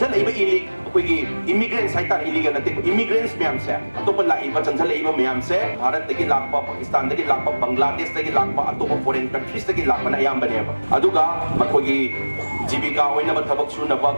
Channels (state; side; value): inverted; both; correlation -1.00